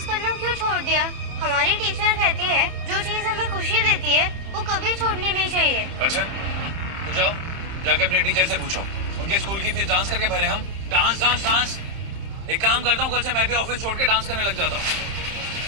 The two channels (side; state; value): left; late; 31 ms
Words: करना क्यों छोड़ दिया? हमारी टीचर कहती है जो चीज हमें खुशी देती है वो कभी छोड़नी नहीं चाहिए। अच्छा तो जाओ, जाके अपने टीचर से पूछो। उनके स्कूल की फीस डांस करके भरे हम। Dance dance dance. एक काम करता हूँ, कल से मैं भी ऑफिस छोड़ के डांस करने लग जाता हूँ।